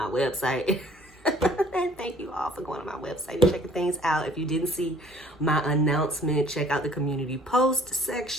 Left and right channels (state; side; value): normal; both; correlation 0.55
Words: website. And thank you all for going on my website and checking things out. If you didn't see my announcement, check out the community post